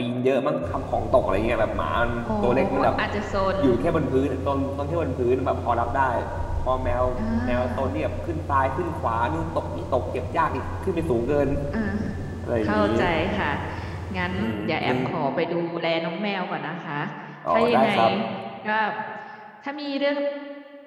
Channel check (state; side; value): identical; both; correlation 1.00